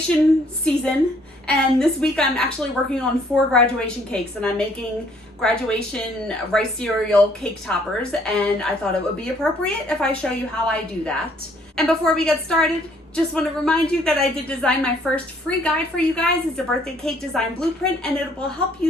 season, and this week I'm actually working on 4 graduation cakes, and I'm making graduation rice cereal cake toppers, and I thought it would be appropriate if I show you how I do that. And before we get started, just want to remind you that I did design my first free guide for you guys. It's a birthday cake design blueprint, and it will help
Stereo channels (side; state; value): both; normal; correlation 0.63